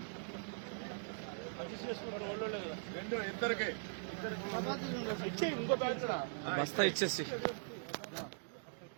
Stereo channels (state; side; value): silent; left; digital silence